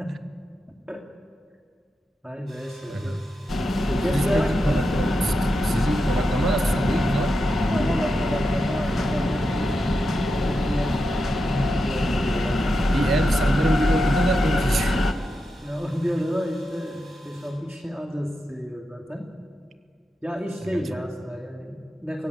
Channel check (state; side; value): normal; both; correlation 0.88